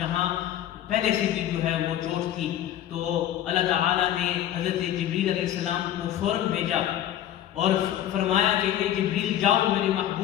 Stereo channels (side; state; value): right; quieter; 11.6 dB